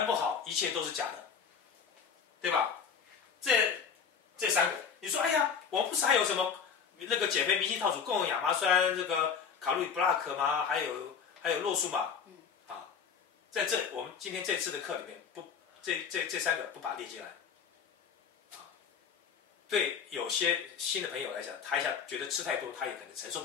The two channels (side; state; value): right; quieter; 6.6 dB